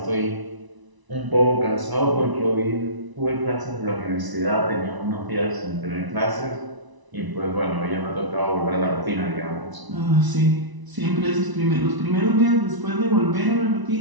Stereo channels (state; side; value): late; left; 1.0 ms